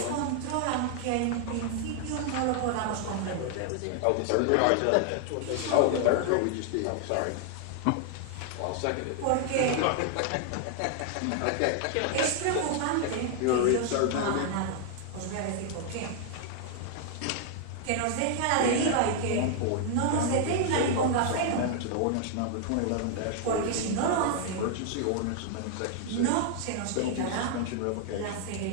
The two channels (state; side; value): different; both; correlation 0.00